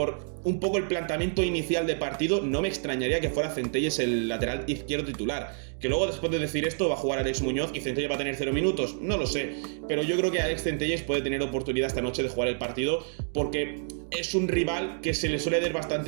un poco el planteamiento inicial de partido, no me extrañaría que fuera Centelles el lateral izquierdo titular. Que luego, después de decir esto, va a jugar Alex Muñoz y Centelles va a tener 0 minutos, no lo sé. Pero yo creo que Alex Centelles puede tener oportunidad esta noche de jugar el partido porque es un rival que se le suele dar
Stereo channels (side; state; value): left; silent; digital silence